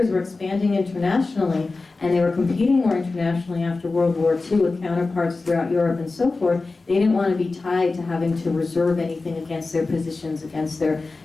were expanding internationally, and they were competing more internationally after World War II with counterparts throughout Europe and so forth. They didn't want to be tied to having to reserve anything against their positions, against their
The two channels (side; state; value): right; quieter; 3.7 dB